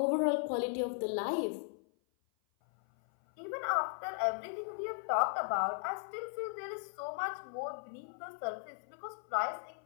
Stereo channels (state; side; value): silent; right; 53 dB below the other